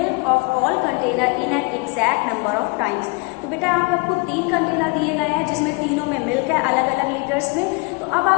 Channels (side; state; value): right; quieter; 29.5 dB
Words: of all container in an exact number of times. तो बेटा यहाँ पे आपको 3 container दिए गए हैं, जिसमें तीनों में मिल्क है अलग अलग लीटर्स में। तो अब